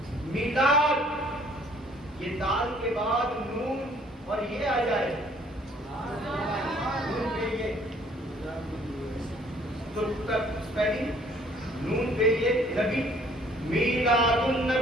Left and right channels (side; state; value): both; normal; correlation 0.59